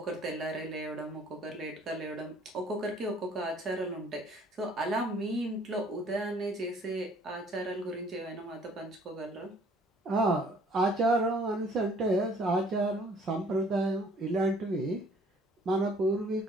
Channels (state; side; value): normal; both; correlation 0.57